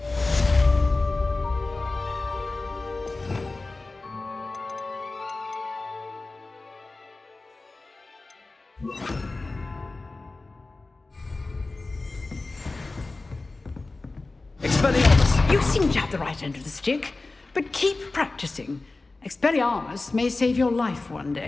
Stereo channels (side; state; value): right; quieter; 3.4 dB